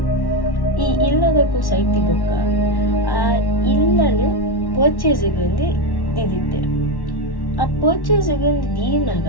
ಈ ಇಲ್ಲದಕ್ಕೂ ಸೈತಿ ಬೊಕ್ಕ ಆ ಇಲ್ಲನ್ನು ಪರ್ಚೇಸಿಗೆ ಒಂದು ದಿದಿತ್ತೇರು ಆ ಪರ್ಚೇಸಿಗೆ ಒಂದು ದೀನಾಗ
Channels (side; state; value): right; late; 1.1 ms